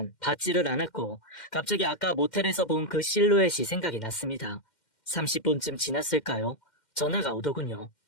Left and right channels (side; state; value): right; late; 2.1 ms